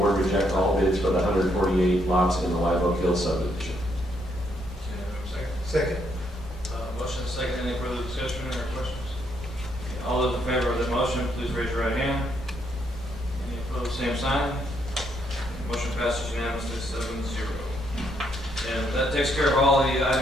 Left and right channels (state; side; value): normal; both; correlation 0.74